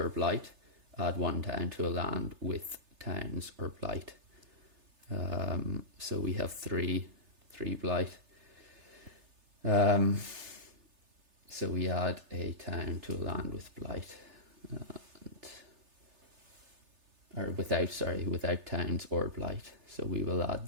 blight, add 1 town to a land with towns or blight. So we have 3 blight. So we add a town to a land with blight, without towns or blight. So we will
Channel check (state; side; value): late; left; 3.3 ms